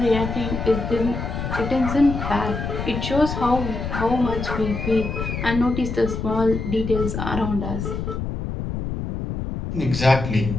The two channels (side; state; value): left; noise; rumble, 4 dB below the sound